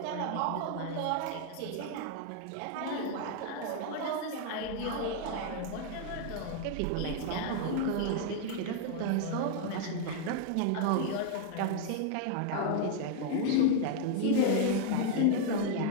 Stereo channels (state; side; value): different; both; correlation 0.00